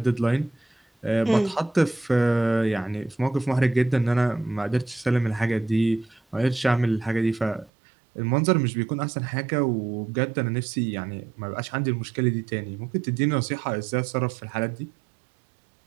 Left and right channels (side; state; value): left; drops out; at 7.7 s